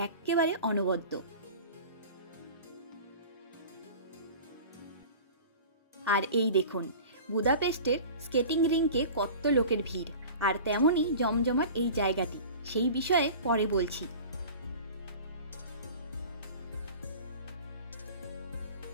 একেবারে অনবদ্য। আর এই দেখুন বুদাপেস্টের স্কেটিং রিংকে কত লোকের ভিড়, আর তেমনই জমজমাট এই জায়গাটি, সেই বিষয়ে পরে বলছি।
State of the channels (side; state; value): both; inverted; correlation -0.38